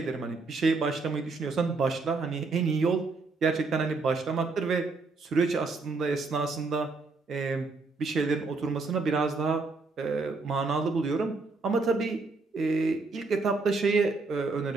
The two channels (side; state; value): left; quieter; 3.9 dB